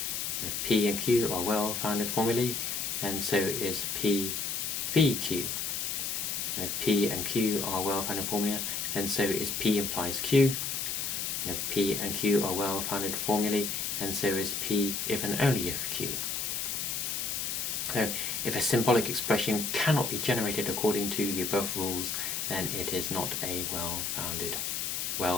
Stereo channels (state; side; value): noise; left; hiss, 2 dB below the sound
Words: if P and Q are well-founded formulae, then so is P v Q. And if P and Q are well-founded formula, then so is P implies Q. And if P and Q are well-founded formulae, then so is P if and only if Q. So if a symbolic expression cannot be generated according to the above rules, then it is not a well-founded,